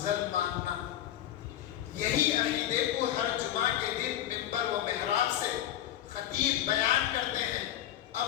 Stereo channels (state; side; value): quieter; right; 12.0 dB